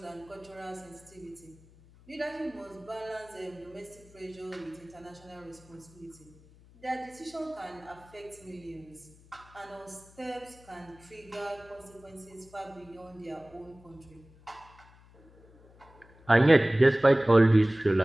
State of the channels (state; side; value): noise; left; hum, 25 dB below the sound